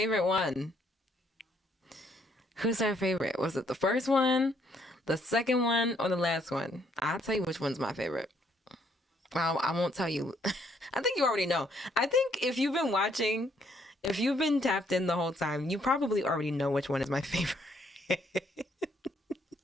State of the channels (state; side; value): normal; both; correlation 0.69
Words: one? Who's our favorite? Was it the first one, the second one, or the last one? I'll tell you which one's my favorite. Well, I won't tell you. I think you already know. I think if you've been watching, if you've been tapped in the whole time, you probably already know which one is my favorite.